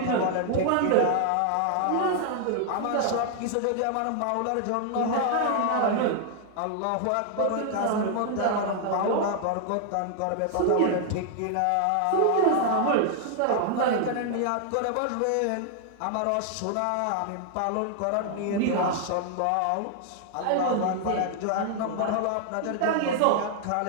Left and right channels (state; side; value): different; both; correlation 0.00